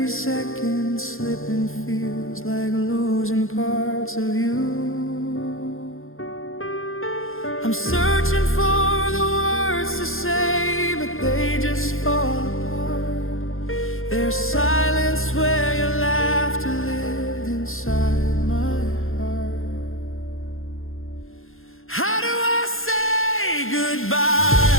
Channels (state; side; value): late; right; 0.60 ms